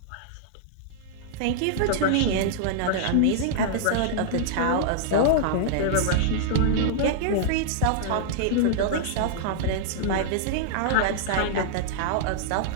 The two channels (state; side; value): different; both; correlation -0.01